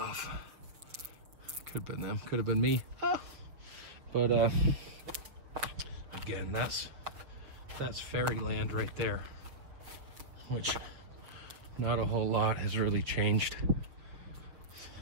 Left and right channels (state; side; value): late; left; 6.2 ms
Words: Could have been them, could have been me. Ah. But again, that's fairyland right there, which not a whole lot has really changed,